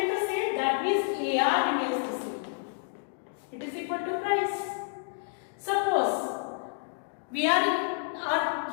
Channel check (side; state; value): right; silent; digital silence